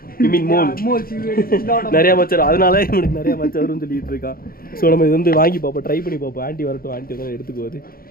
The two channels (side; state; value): right; late; 0.43 ms